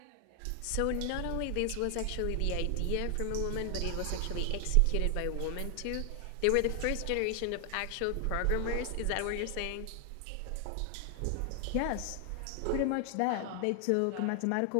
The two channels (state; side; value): different; both; correlation 0.00